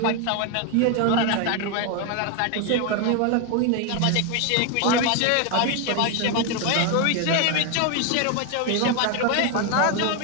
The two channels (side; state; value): both; different; correlation 0.01